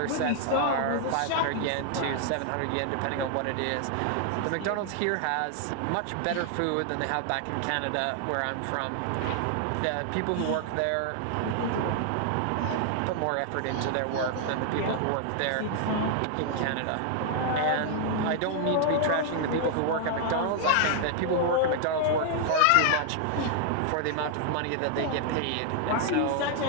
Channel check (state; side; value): different; both; correlation 0.00